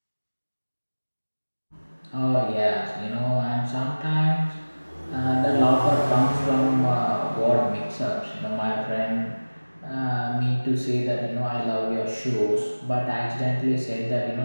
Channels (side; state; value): both; inverted; correlation -1.00